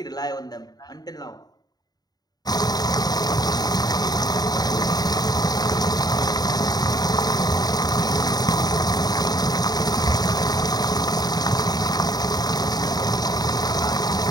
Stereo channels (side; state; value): right; late; 0.19 ms